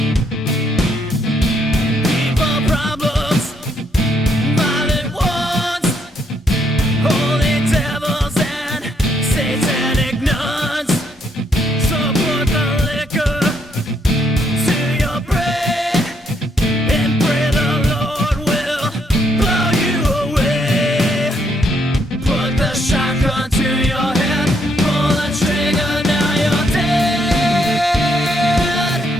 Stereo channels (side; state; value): both; normal; correlation 0.73